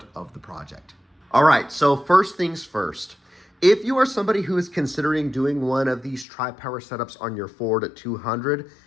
of the project. All right, so first things first. If you are somebody who is considering doing one of these tri-power setups on your Ford 200,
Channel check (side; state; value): right; drops out; at 6.2 s